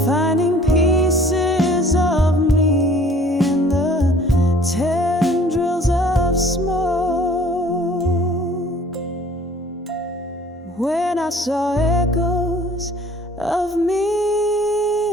finding pieces of me in the tendrils of smoke. When I saw echoes of me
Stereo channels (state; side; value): normal; both; correlation 0.53